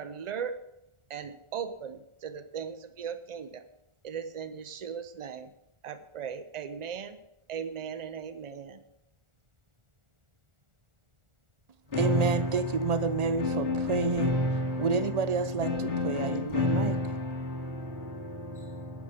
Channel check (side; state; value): left; late; 1.4 ms